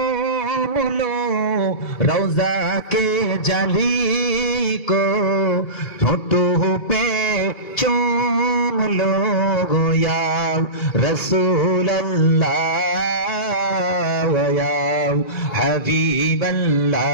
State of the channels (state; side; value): late; right; 2.3 ms